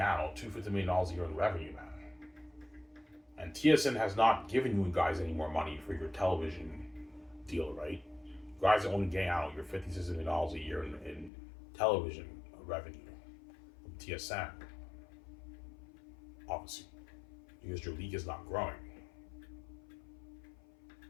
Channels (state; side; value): drops out; right; at 11.3 s